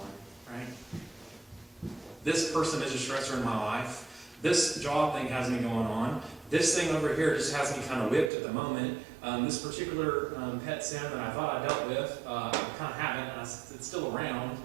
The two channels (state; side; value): drops out; left; at 8.3 s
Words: right? This person is a stressor in my life. This job thing has me going on. This thing over here just has me kind of whipped at the moment. This particular pet sin that I thought I dealt with, I kind of haven't. It's still around.